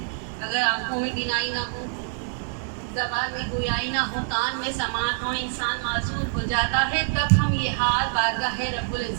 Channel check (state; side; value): silent; left; digital silence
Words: اگر آنکھوں میں بینائی نہ ہو، زبان میں گویائی نہ ہو، کان میں سماعت ہو، انسان معذور ہو جاتا ہے، تب ہم یہ ہاتھ بارگاہ رب